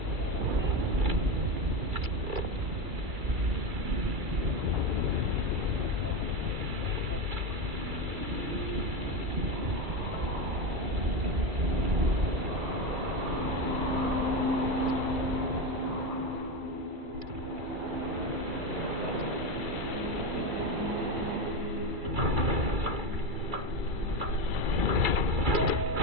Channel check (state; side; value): late; left; 2.3 ms